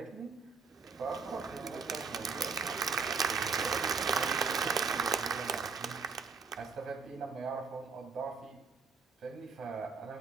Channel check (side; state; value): left; quieter; 5.1 dB